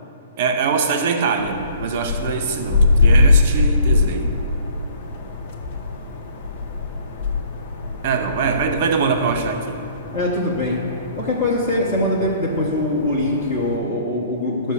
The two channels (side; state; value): both; inverted; correlation -0.54